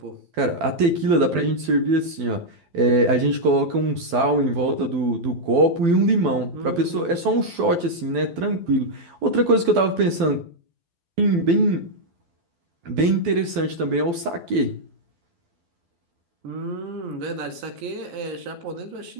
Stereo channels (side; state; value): left; late; 12 ms